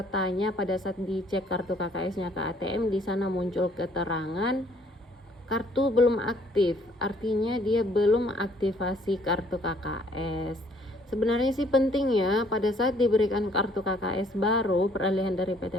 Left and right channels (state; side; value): normal; both; correlation 0.62